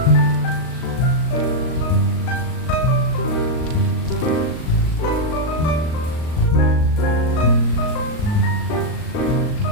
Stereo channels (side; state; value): right; late; 39 ms